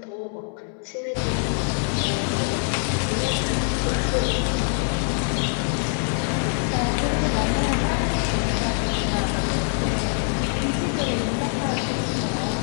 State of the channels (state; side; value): silent; right; 60 dB below the other